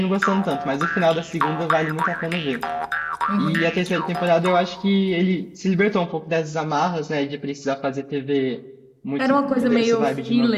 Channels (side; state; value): both; identical; correlation 1.00